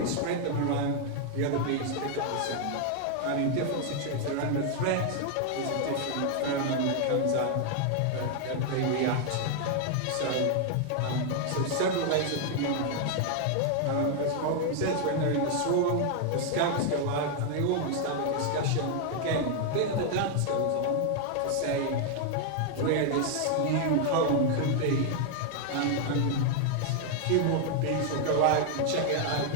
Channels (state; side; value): different; both; correlation 0.00